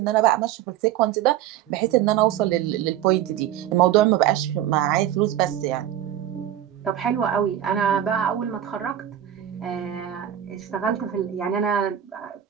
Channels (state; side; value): quieter; left; 11.4 dB